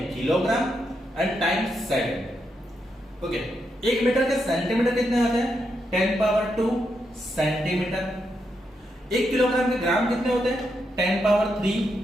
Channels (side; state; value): both; normal; correlation 0.82